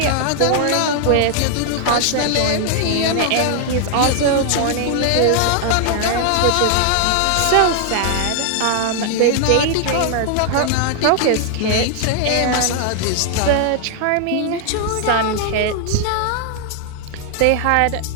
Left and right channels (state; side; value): different; both; correlation 0.00